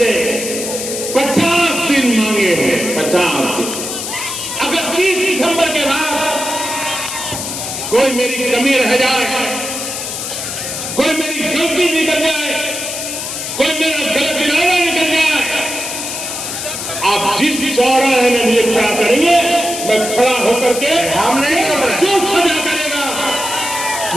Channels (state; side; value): noise; left; hiss, 5 dB below the sound